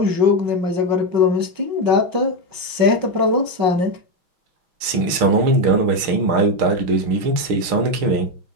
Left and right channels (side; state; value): left; late; 6.4 ms